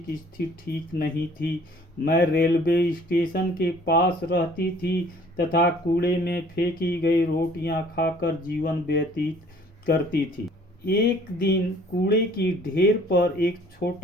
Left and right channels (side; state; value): both; normal; correlation 0.55